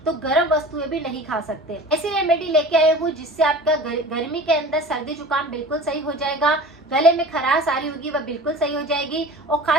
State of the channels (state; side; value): normal; both; correlation 0.39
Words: तो गर्म वस्तुएं भी नहीं खा सकते। ऐसी रेमेडी लेके आए हूँ जिससे आपका गर्मी के अंदर सर्दी जुकाम बिल्कुल सही हो जाएगा, गले में खराश आ रही होगी वह बिल्कुल सही हो जाएगी और